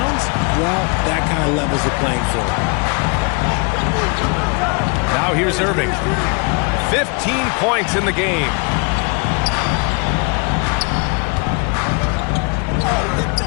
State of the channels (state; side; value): quieter; right; 34.1 dB